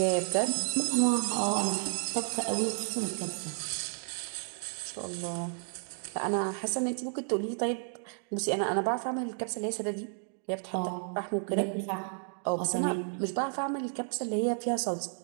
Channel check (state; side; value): silent; left; 56 dB below the other